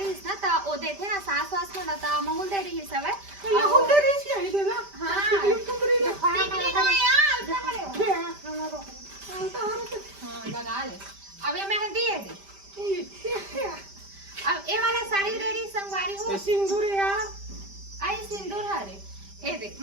ना त ओ देखे ना सास वास को ना त महूल दे रही सब है ये हो दे रही है ये देना हां तुमरी ले खाया टिकली तो यार उल्टा खड़े हो हां लगा ले अब ये मेहंदी है दे अब ये वाला साड़ी दे रही संगवारी हो सिंदूर यार आई सिंदूर हरे ए दे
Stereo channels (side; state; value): left; late; 5.1 ms